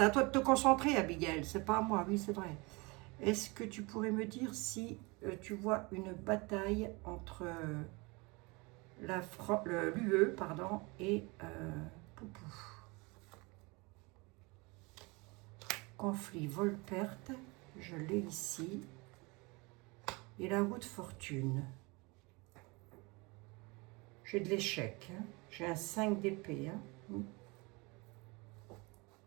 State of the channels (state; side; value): quieter; left; 26.6 dB